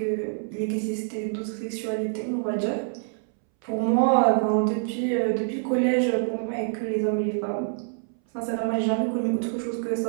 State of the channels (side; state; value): left; silent; 61 dB below the other